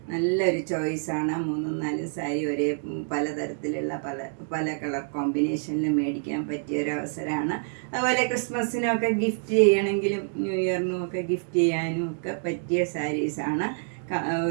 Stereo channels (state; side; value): silent; left; digital silence